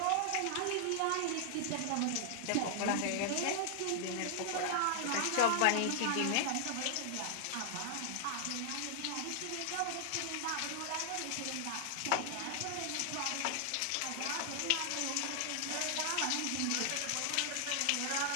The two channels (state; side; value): different; both; correlation 0.00